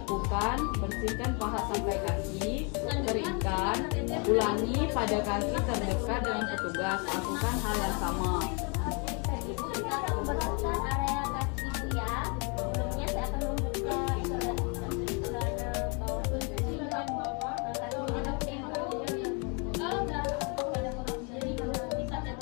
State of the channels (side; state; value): right; quieter; 34.6 dB